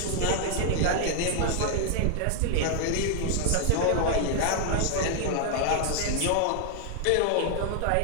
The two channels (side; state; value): both; different; correlation 0.00